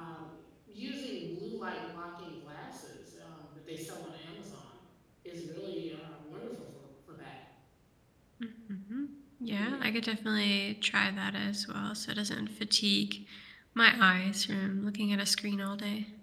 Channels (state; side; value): identical; both; correlation 1.00